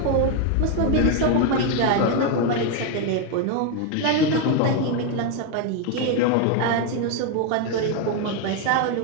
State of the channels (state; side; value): different; both; correlation 0.01